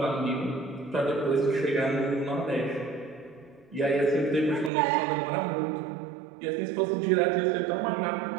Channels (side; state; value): left; drops out; at 4.7 s